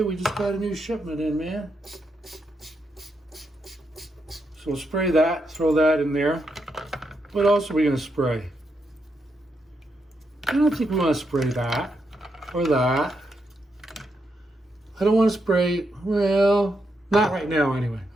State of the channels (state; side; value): normal; both; correlation 0.82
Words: we just got a new shipment in, man. So we'll spray that, throw that in there. What else are we gonna spray? I don't think we wanna spray that, or that. I don't wanna spray, well, not right now anyway.